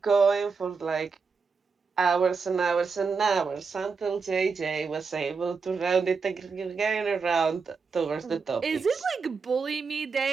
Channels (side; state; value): left; quieter; 5.1 dB